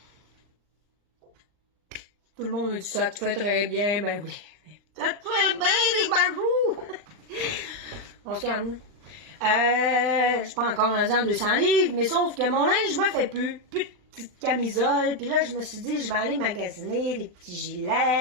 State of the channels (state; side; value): late; left; 39 ms